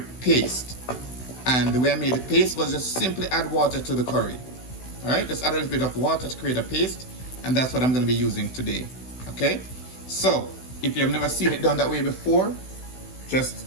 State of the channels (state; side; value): late; right; 16 ms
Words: paste. And the way I made the paste was just simply add water to the curry. Alright, just add a little bit of water to create a paste, and that's what I'm going to be using today. Okay, so if you've never seen it done that way before, just